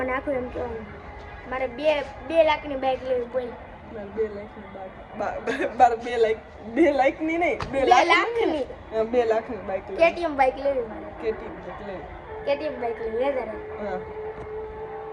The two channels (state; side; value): identical; both; correlation 1.00